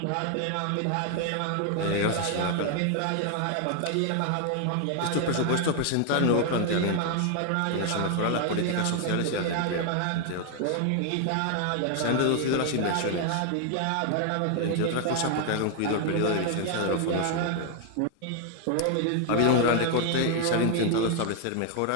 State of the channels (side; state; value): both; different; correlation 0.00